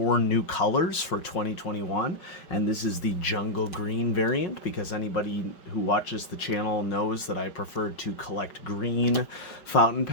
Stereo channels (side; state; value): right; late; 5.5 ms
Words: new colors for 2021. And this is the jungle green variant, because anybody who watches the channel knows that I prefer to collect green fountain